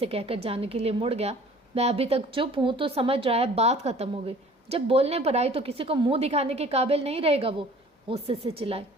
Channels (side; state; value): both; normal; correlation 0.49